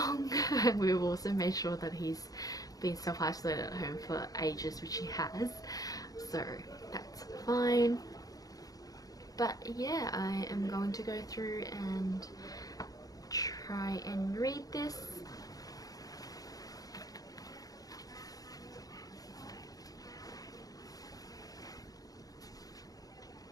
We've also made sure that he's been self-isolated at home for ages, which he has, so that's fine. But yeah, I am going to go through and try and read this.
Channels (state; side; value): late; right; 0.18 ms